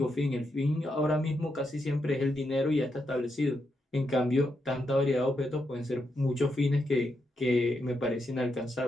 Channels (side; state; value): both; normal; correlation 0.83